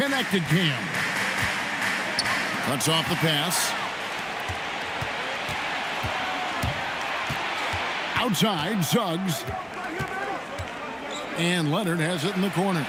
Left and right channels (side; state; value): both; identical; correlation 1.00